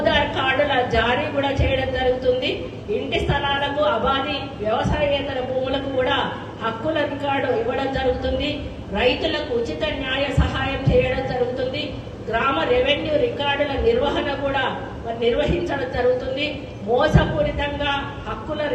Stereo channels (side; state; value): both; identical; correlation 1.00